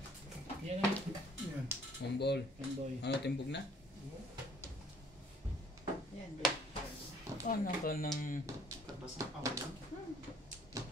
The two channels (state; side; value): normal; both; correlation 0.58